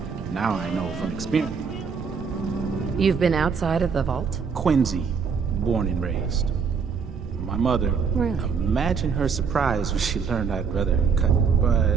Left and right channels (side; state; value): left; quieter; 5.9 dB